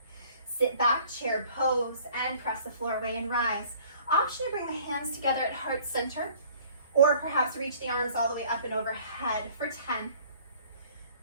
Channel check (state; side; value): inverted; both; correlation -0.54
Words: Sit back, chair pose, and press the floor away and rise. Option to bring the hands together at heart center, or perhaps reach the arms all the way up and overhead for 10,